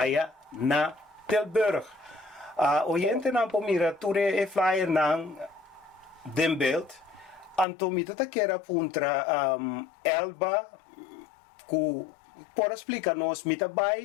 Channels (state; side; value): drops out; right; at 7.7 s